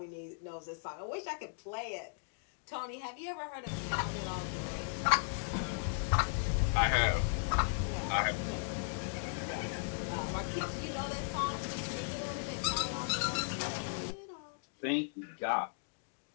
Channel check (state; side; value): silent; right; digital silence